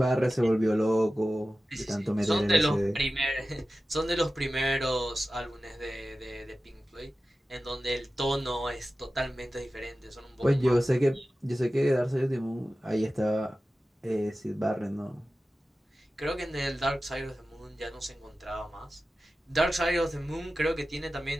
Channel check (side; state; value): both; normal; correlation 0.95